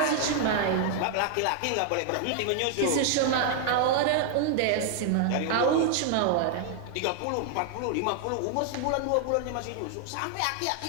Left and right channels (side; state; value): both; different; correlation 0.00